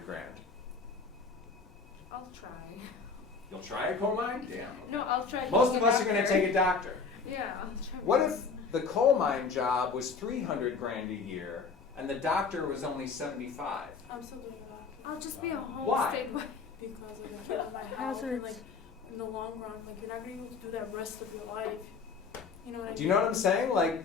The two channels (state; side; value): quieter; right; 4.9 dB